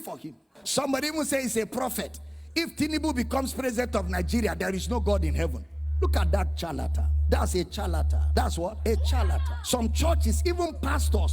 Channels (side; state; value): both; identical; correlation 1.00